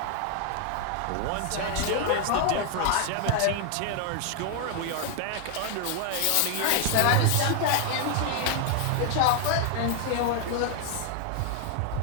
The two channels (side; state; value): both; different; correlation 0.00